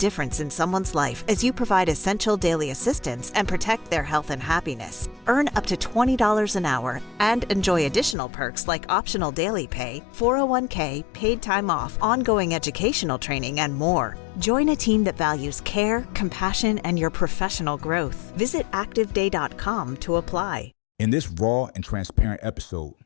in someone's life as you provide essential daily assistance and protect their health and happiness. Earn up to $20 an hour and enjoy additional perks like optional daily pay, 401k, paid time off, ongoing educational training, and more. Join a team that values care, compassion, and your professional growth. Visit activeday.com to apply. In this raw and transparent episode,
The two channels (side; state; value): right; drops out; at 8.2 s